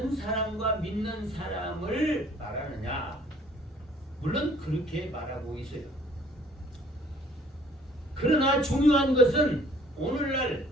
사람과 믿는 사람을 말하느냐? 물론 그렇게 말하고 있어요. 그러나 중요한 것은 오늘날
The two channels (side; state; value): both; normal; correlation 0.56